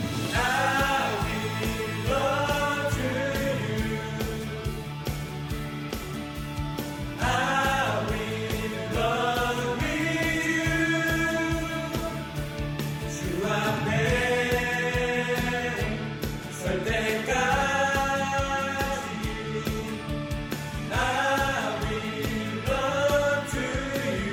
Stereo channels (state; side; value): identical; both; correlation 1.00